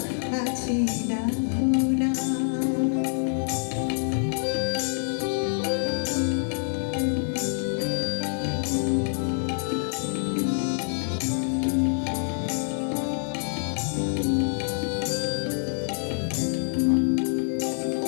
কাছে ডাকো না।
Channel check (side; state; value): right; silent; 61 dB below the other